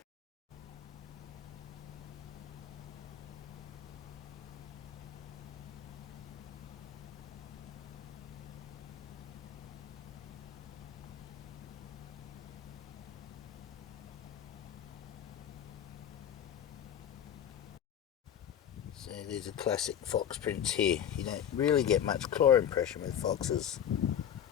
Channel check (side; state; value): right; quieter; 9.5 dB